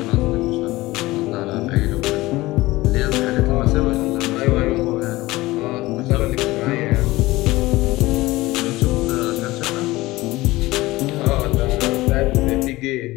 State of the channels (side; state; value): right; quieter; 19.2 dB